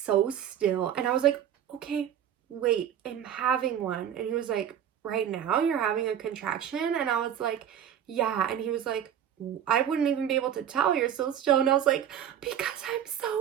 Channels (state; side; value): quieter; left; 9.7 dB